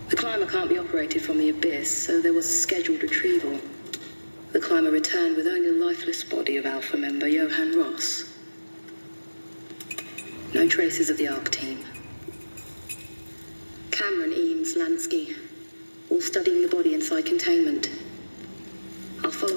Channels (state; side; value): inverted; both; correlation -1.00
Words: The climber can't be operated from the abyss, so there was a scheduled retrieval. The climber returned with only the lifeless body of Alpha member Johann Ross. No traces of the ARC team. Cameron, Eames, Lansky, all studying the body inside containment. I'll